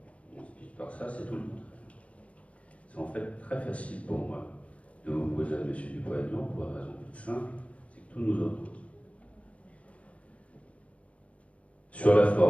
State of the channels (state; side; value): late; right; 0.064 ms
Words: speech par ça, c'est tout le contraire. C'est en fait très facile pour moi de m'opposer à M. Dupont-Aignan pour une raison toute simple, c'est que tout nous oppose. Sur la